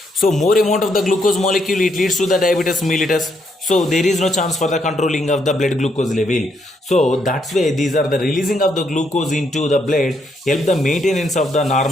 So more amount of the glucose molecule, it leads to the diabetes mellitus. So there is no chance for the controlling of the blood glucose level. So that's why these are the releasing of the glucose into the blood help the maintenance of the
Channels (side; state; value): both; normal; correlation 0.75